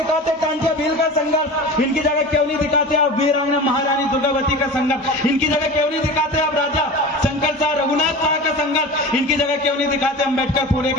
कांटिया भील का संघर्ष? इनकी जगह क्यों नहीं दिखाते आप वीरांगना महारानी दुर्गावती का संघर्ष? इनकी जगह क्यों नहीं दिखाते आप राजा शंकर शाह रघुनाथ शाह का संघर्ष? इनकी जगह क्यों नहीं दिखाते अम्बेडकर फूले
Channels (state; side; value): normal; both; correlation 0.33